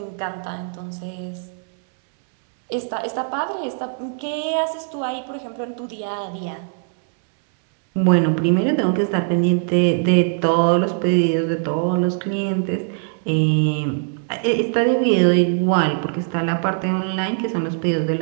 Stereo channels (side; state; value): left; silent; 64 dB below the other